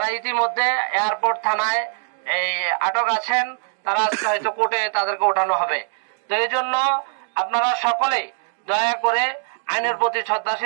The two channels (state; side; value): silent; left; digital silence